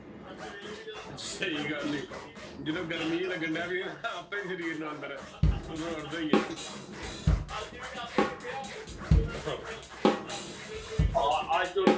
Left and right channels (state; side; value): identical; both; correlation 1.00